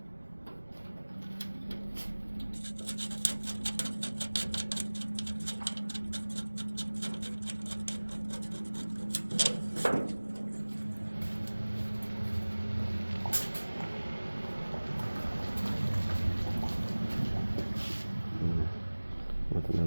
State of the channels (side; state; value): both; inverted; correlation -1.00